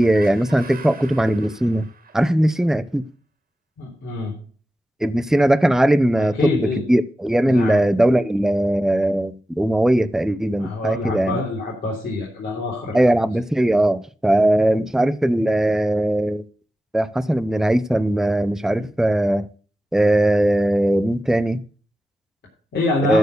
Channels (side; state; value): both; normal; correlation 0.93